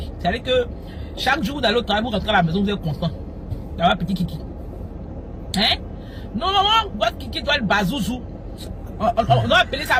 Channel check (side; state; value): both; identical; correlation 1.00